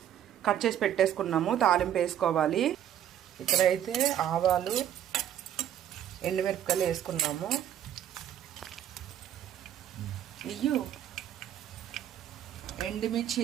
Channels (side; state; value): left; quieter; 10.7 dB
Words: కట్ చేసి పెట్టేసుకున్నాము. తాలింపు వేసుకోవాలి. ఇక్కడైతే ఆవాలు, ఎండుమిరపకాయలు వేసుకున్నాము. ఎండుమిర్చి